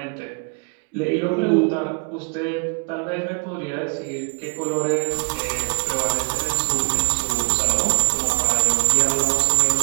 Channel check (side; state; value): left; quieter; 35.6 dB